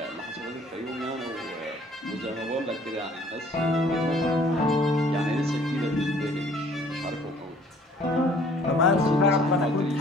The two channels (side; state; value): both; normal; correlation 0.56